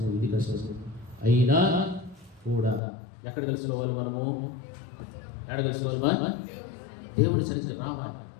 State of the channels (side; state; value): right; drops out; at 2.8 s